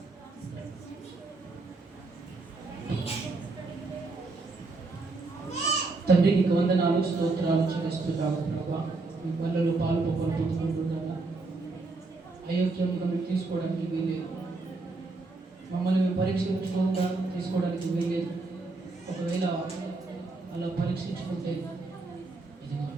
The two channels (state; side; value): quieter; left; 3.5 dB